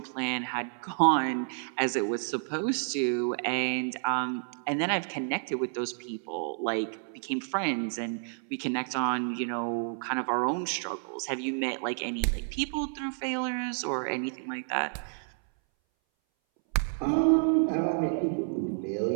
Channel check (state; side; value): silent; left; 58 dB below the other